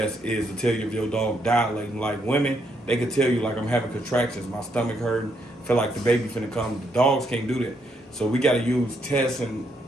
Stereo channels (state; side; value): normal; both; correlation 0.76